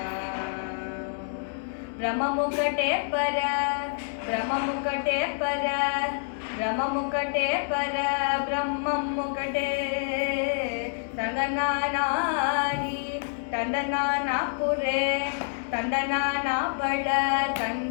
ಬ್ರಹ್ಮಮುಕಟೆ ಪರ ಬ್ರಹ್ಮಮುಕಟೆ ಪರ ಬ್ರಹ್ಮಮುಕಟೆ ಪರ ಬ್ರಹ್ಮಮುಕಟೆ ತಂದನಾನಾಗಿ ತಂದನಾನ ಪುರೆ ತಂದನಾನ ಬಳ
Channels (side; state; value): right; silent; digital silence